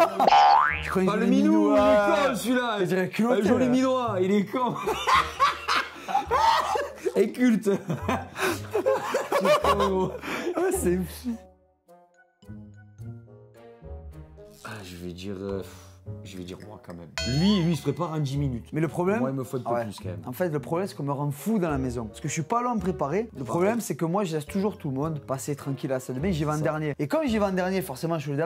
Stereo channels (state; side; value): identical; both; correlation 1.00